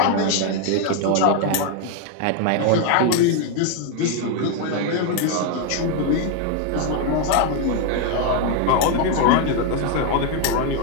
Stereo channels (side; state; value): both; different; correlation 0.01